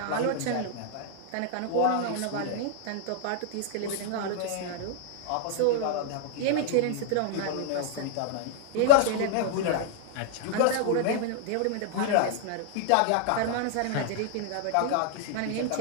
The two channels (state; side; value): different; both; correlation -0.01